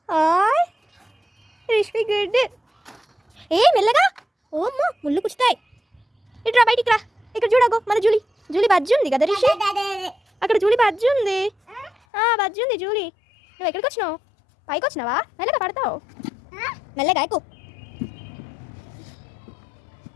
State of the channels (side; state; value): right; drops out; at 11.9 s